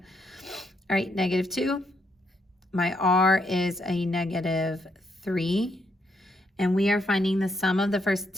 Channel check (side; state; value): both; normal; correlation 0.77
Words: right, -2. My r is a -3. And we are finding the sum of the first